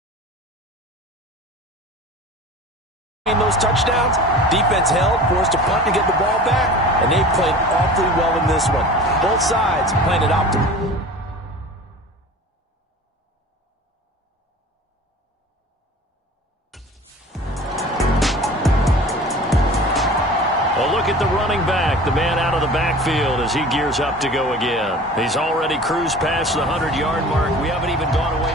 those touchdowns. Defense held, forced a punt to get the ball back, and they played awfully well in this one. Both sides playing it optimal. A look at the running back, the man out of the backfield as he gears up to go again. He's already cruised past the 100-yard mark. We haven't even gone away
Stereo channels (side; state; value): both; normal; correlation 0.40